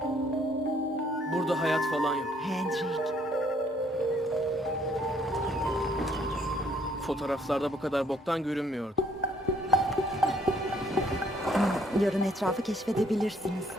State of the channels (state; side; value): normal; both; correlation 0.65